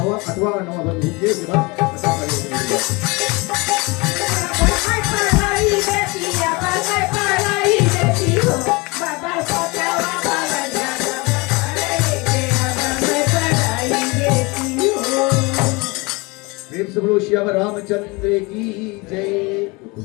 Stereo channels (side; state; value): right; quieter; 26.1 dB